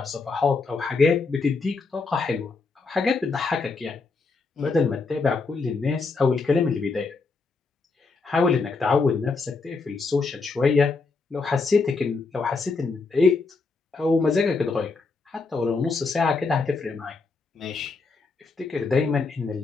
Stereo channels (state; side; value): quieter; right; 4.2 dB